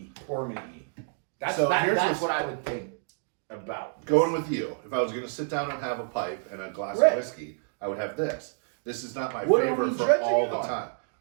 Pour me E. That's So here's that's this- what I would think about this. Going with you, if I was going to sit down and have a pipe and a glass Right. of whiskey, I would have this. This is not my What are favorite we for judging all it the on? time.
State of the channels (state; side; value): silent; left; digital silence